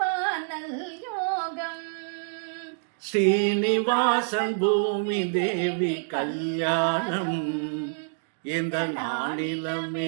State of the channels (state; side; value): silent; left; digital silence